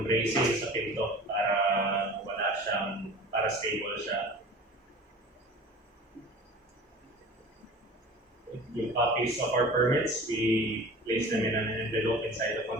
bracing sa pinto para wala siyang, para stable siya. yung copies of our permits, we place them in an envelope inside the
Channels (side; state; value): both; normal; correlation 0.40